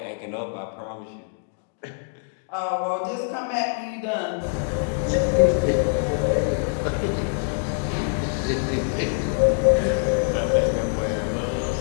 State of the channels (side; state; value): right; silent; 61 dB below the other